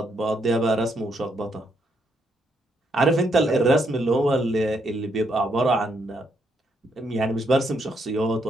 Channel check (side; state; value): both; normal; correlation 0.75